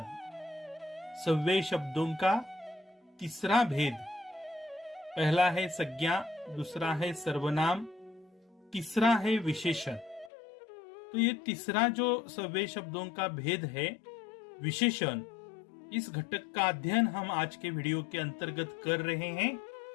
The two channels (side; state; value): right; drops out; at 10.3 s